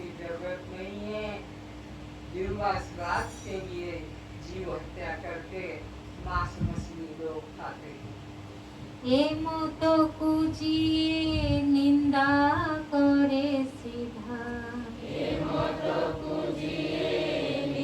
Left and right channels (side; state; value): both; identical; correlation 1.00